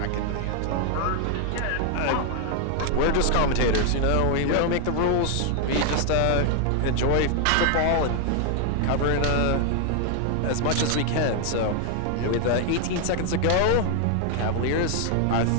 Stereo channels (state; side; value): different; both; correlation 0.00